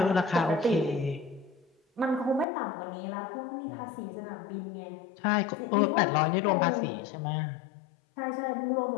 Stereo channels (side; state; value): right; drops out; at 2.5 s